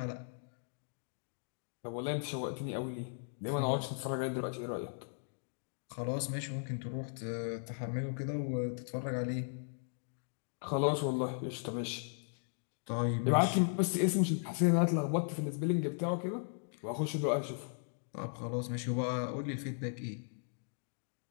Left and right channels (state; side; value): silent; right; digital silence